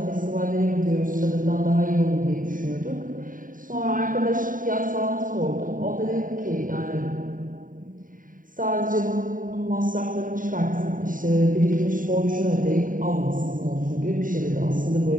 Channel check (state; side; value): late; left; 0.39 ms